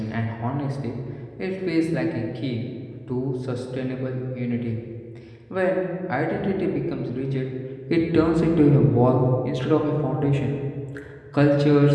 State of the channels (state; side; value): identical; both; correlation 1.00